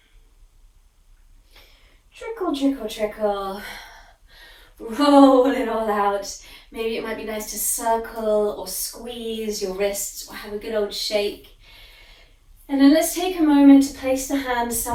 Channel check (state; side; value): identical; both; correlation 1.00